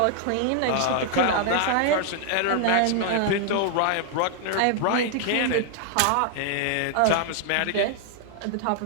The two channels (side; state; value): both; different; correlation 0.00